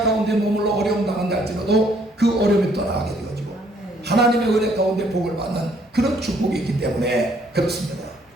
가운데 머물러 어려움 당한다 할지라도 그 어려움이 떠나게 되어지고 하나님의 은혜 가운데 복을 받는 그런 축복이 있기 때문에 그렇습니다.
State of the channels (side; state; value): both; normal; correlation 0.65